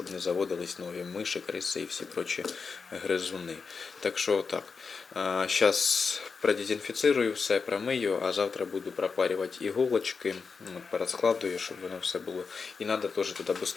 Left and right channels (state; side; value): quieter; right; 5.1 dB